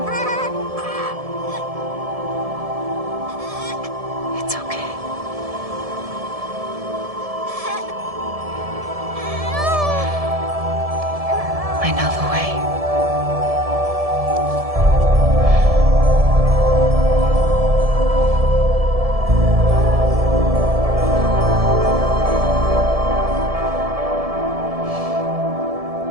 It's okay. I know the way.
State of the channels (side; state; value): left; late; 1.7 ms